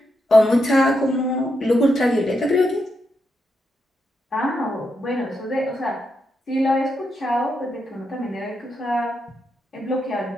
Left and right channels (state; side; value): normal; both; correlation 0.83